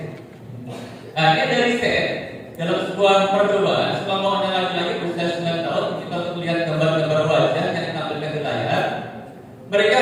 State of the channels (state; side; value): identical; both; correlation 1.00